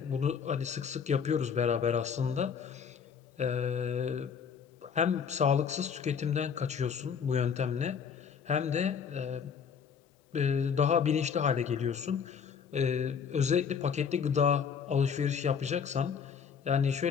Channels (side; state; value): right; quieter; 6.8 dB